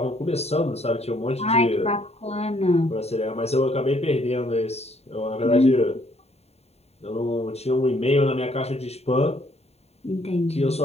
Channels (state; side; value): late; right; 0.30 ms